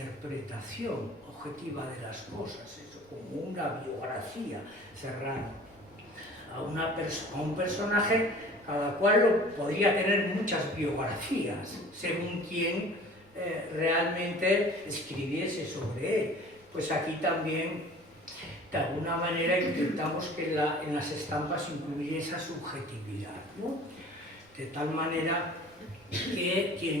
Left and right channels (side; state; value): both; normal; correlation 0.46